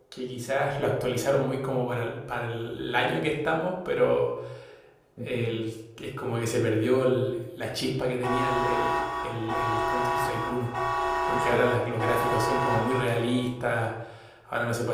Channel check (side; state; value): both; identical; correlation 1.00